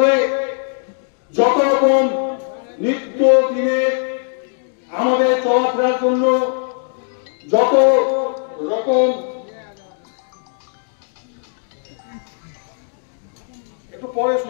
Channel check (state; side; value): silent; right; digital silence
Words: যত রকম নিত্য দিনে আমাদের চলাফেরার জন্য যত রকম একটু পরে